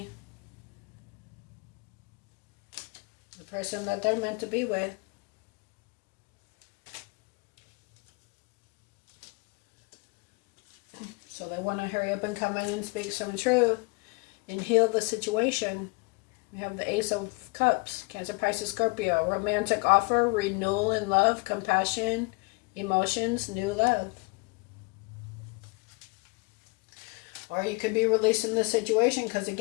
The person that they're meant to be with. So they want to hurry up and come in and speak some truth and heal the situation. We have the Ace of Cups, Cancer, Pisces, Scorpio. Romantic offer, renewal in love, compassion, emotions, new love. Or you could be releasing the situation because,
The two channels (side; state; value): right; quieter; 28.1 dB